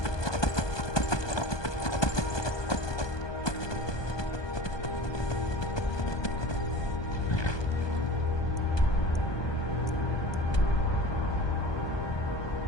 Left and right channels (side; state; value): right; late; 1.2 ms